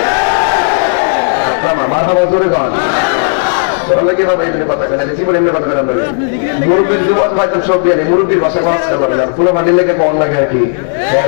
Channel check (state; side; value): silent; right; digital silence